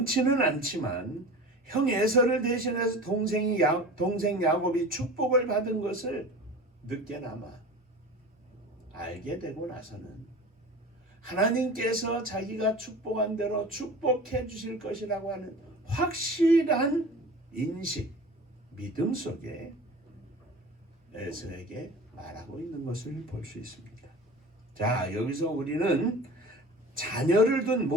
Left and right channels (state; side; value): normal; both; correlation 0.37